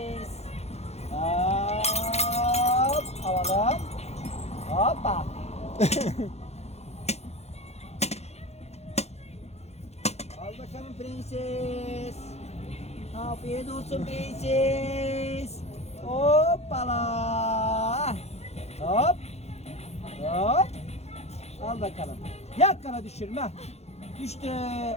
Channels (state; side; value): late; right; 0.31 ms